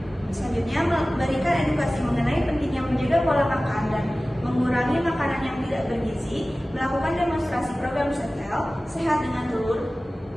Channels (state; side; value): normal; both; correlation 0.97